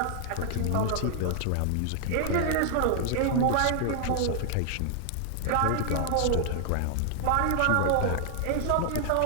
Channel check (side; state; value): both; different; correlation 0.00